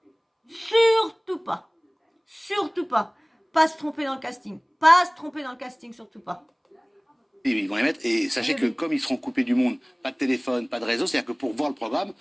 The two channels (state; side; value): identical; both; correlation 1.00